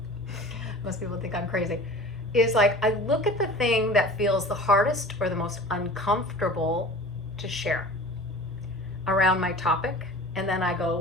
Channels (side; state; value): both; normal; correlation 0.41